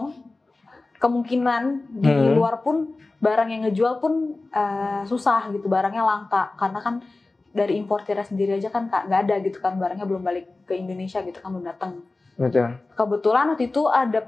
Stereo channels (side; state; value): right; quieter; 3.3 dB